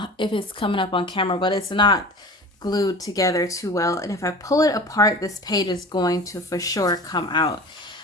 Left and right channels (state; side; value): normal; both; correlation 0.37